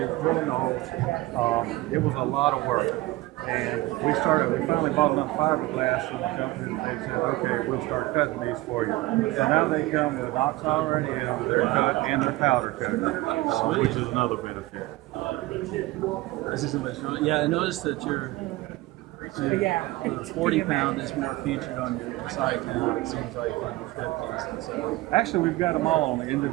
edge, drilling the holes. It was a lot of work. And we finally bought enough fiberglass from the company that they said, okay, we'll start cutting these for you. And now they come with knocks already in, they're cut, and they're powder coated, which is another benefit. This is yeah, I noticed that your 40-pound is more featured on your side now. It seems like on your 50s. And so. Actually, we've got them all on the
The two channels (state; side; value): quieter; left; 19.2 dB